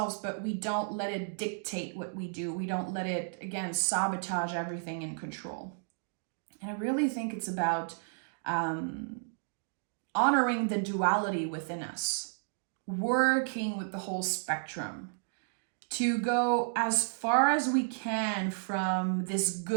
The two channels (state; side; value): silent; left; digital silence